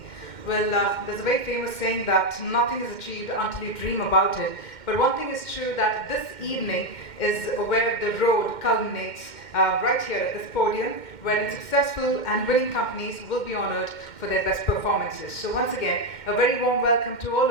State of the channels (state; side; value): late; right; 2.1 ms